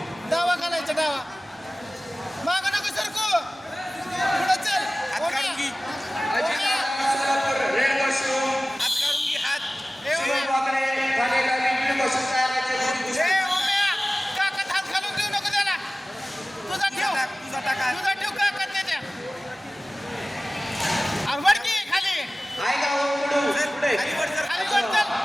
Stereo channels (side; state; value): both; normal; correlation 0.97